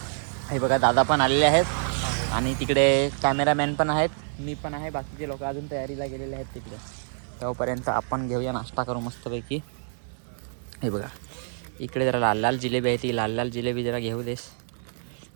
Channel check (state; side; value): silent; left; digital silence